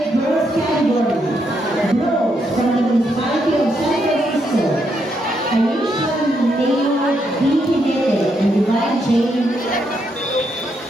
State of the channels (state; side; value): normal; both; correlation 0.78